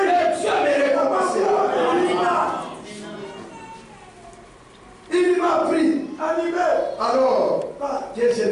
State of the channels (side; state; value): both; identical; correlation 1.00